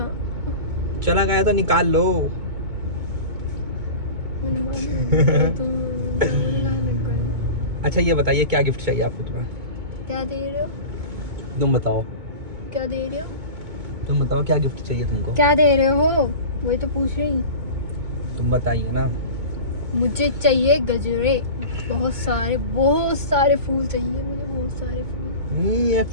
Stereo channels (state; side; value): late; left; 2.2 ms